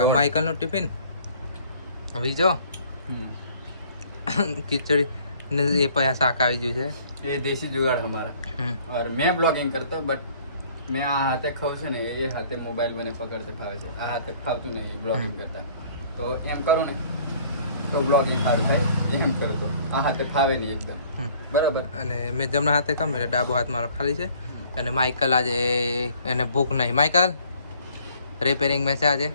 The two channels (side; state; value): both; inverted; correlation -0.56